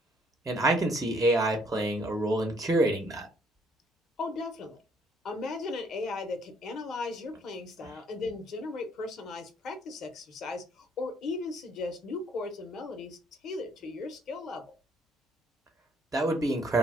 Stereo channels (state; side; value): normal; both; correlation 0.65